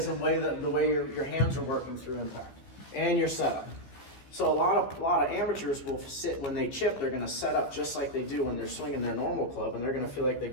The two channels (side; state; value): right; late; 15 ms